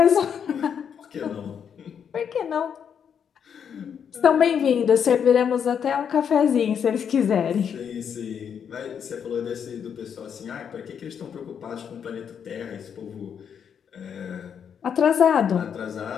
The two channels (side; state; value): right; quieter; 7.7 dB